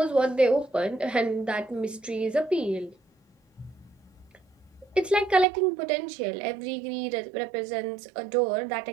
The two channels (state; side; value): drops out; left; at 5.5 s